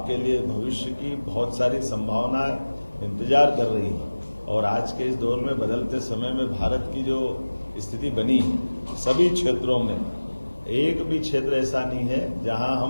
लिए भविष्य की बहुत सारी संभावनाएं इंतजार कर रही हैं और आज के इस दौर में बदलते समय में भारत की जो स्थिति बनी है, सभी क्षेत्रों में एक भी क्षेत्र ऐसा नहीं है जहां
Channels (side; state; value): both; inverted; correlation -1.00